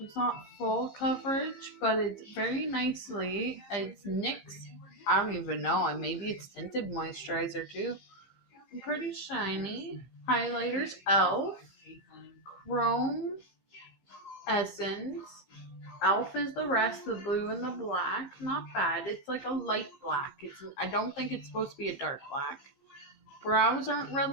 not full coverage, but it's very nicely. It's NYX. I don't even know. Maybe it's tinted moisturizer too. I'm pretty shiny. Highlighters, ELF. Chrome Essence. ELF is the rest, the blue and the black. Not bad. It's like a light black. I don't think it's supposed to be a dark black. Brows aren't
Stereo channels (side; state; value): right; late; 15 ms